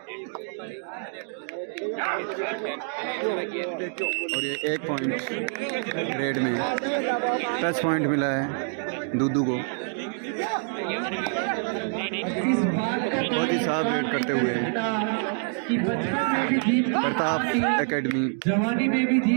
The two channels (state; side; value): silent; left; 57 dB below the other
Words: और ये 1 पॉइंट रेड में टच पॉइंट मिला है दूदू को। बहुत ही साफ रेड करते हुए प्रताप एकेडमी जवानी में भी